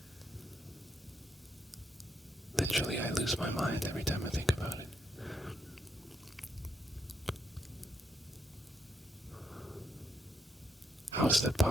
Literally, I lose my mind every time I think about it. How is that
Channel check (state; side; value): normal; both; correlation 0.78